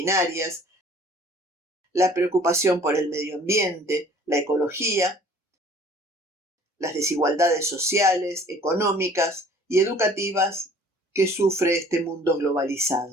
la preocupación por el medio ambiente, la ecología, las desigualdades sociales, económicas y educativas que sufre este mundo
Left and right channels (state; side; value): normal; both; correlation 0.52